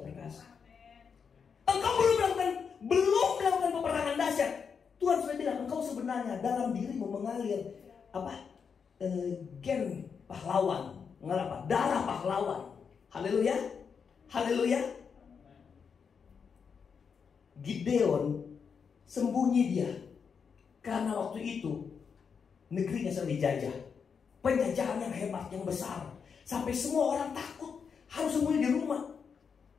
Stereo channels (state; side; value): quieter; right; 6.3 dB